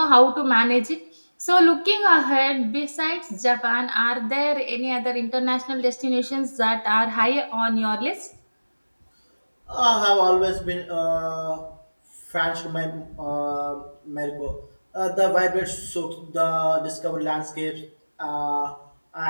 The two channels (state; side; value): inverted; both; correlation -1.00